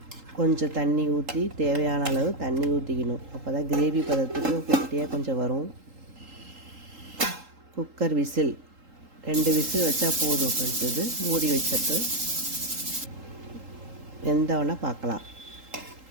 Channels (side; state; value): left; late; 3.8 ms